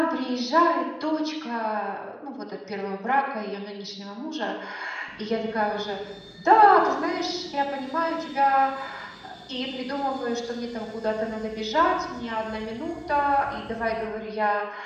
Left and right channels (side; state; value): both; identical; correlation 1.00